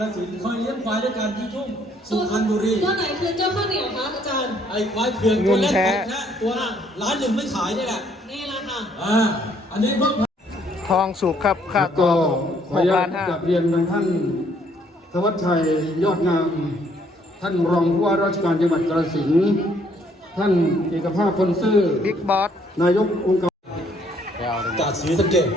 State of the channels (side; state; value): both; normal; correlation 0.66